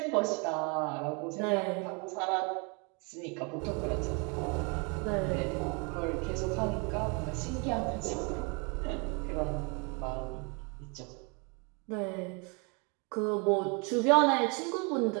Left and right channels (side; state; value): left; quieter; 32.9 dB